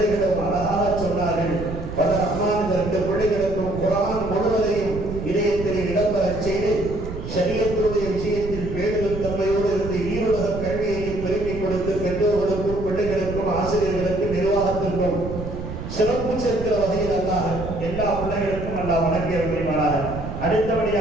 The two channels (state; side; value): noise; right; rumble, 8 dB below the sound